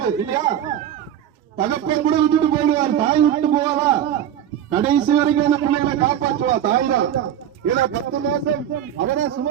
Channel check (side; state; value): left; quieter; 10.5 dB